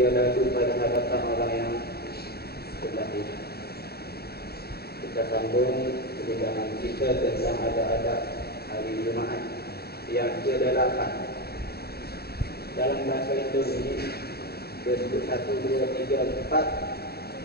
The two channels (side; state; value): right; late; 0.46 ms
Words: ia lalu pada hadapan orang yang sebelah ini. Kita sambung perbincangan kita tentang ada hari Jumaat yang ke-8. Dalam bahasa Indonesia disebut 1, 2, 3, 4,